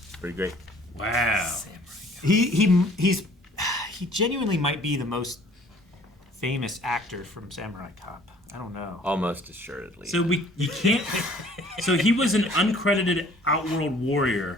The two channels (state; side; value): normal; both; correlation 0.54